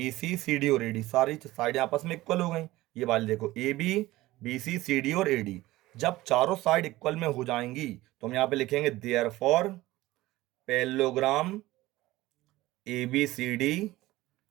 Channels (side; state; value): left; quieter; 17.8 dB